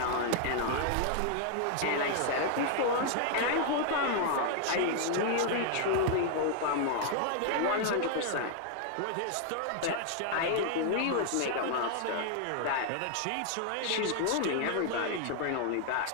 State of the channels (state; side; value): different; both; correlation 0.00